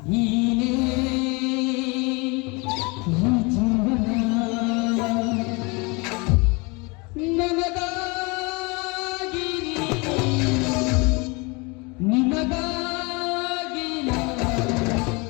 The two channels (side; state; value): right; quieter; 28.1 dB